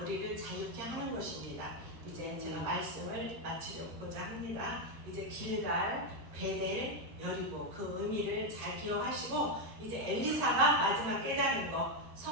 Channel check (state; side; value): late; left; 13 ms